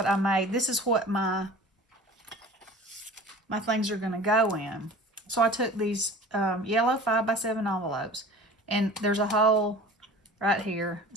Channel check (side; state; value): both; normal; correlation 0.41